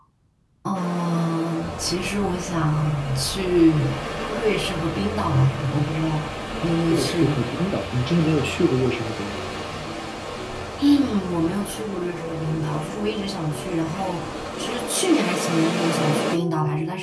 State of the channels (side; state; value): both; identical; correlation 1.00